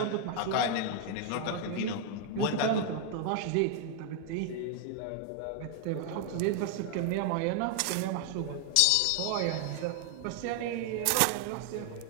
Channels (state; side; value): different; both; correlation 0.00